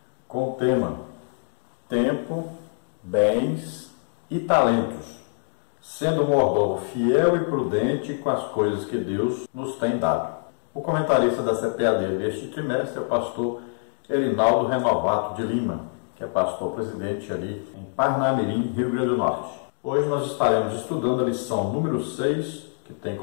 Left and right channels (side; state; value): right; silent; digital silence